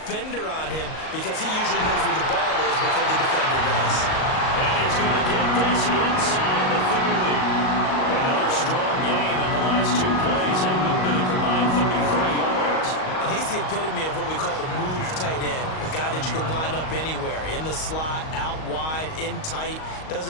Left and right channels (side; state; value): right; late; 38 ms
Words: on him, because he usually knows where the ball is before the defender does. And he's going to get this inside the 30. Another strong gain on the last 2 plays. They moved it a combined 33 yards. And he's the epitome of what we call the move tight end, a guy that you can line up anywhere, in the slot, out wide, in tight,